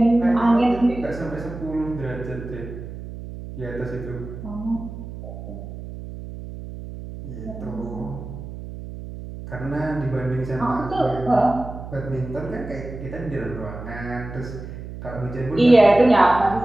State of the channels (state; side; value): noise; right; hum, 11 dB below the sound